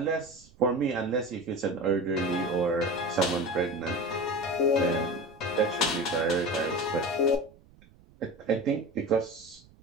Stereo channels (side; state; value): right; noise; rumble, 26 dB below the sound